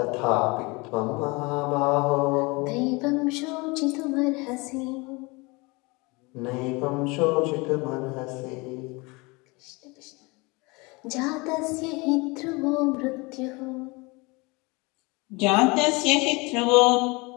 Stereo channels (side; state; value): right; quieter; 26.1 dB